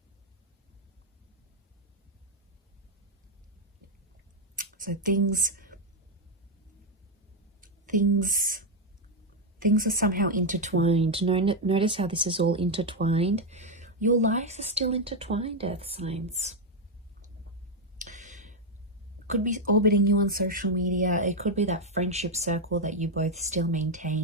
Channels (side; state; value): both; normal; correlation 0.03